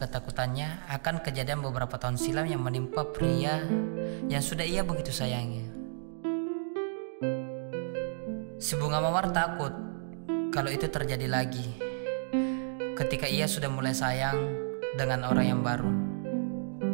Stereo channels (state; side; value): silent; left; digital silence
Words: akan kejadian beberapa tahun silam yang menimpa pria yang sudah ia begitu sayangi. Si bunga mawar takut kalau itu terjadi lagi ketika ia sudah mulai sayang dengan orang yang baru.